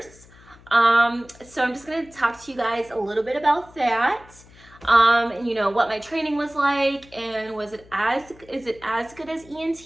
So I'm just going to talk to you guys a little bit about that. And what my training was like, and is it as good as ENT,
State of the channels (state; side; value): noise; left; hum, 24 dB below the sound